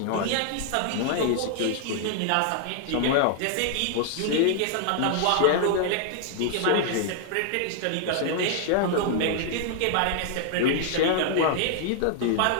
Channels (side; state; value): both; different; correlation 0.00